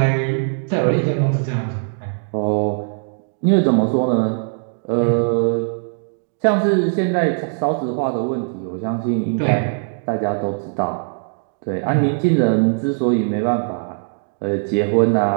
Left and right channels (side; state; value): left; silent; digital silence